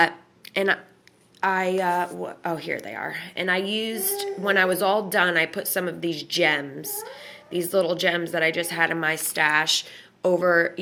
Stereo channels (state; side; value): identical; both; correlation 1.00